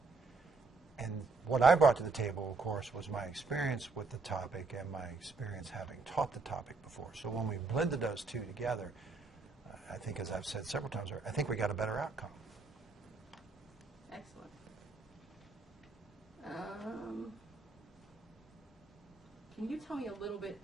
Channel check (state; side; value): quieter; left; 4.2 dB